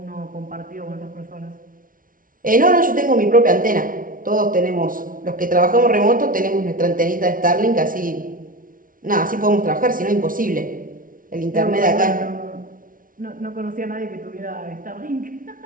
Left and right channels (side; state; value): left; late; 0.40 ms